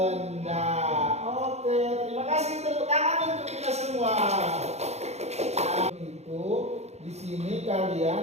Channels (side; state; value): left; late; 0.31 ms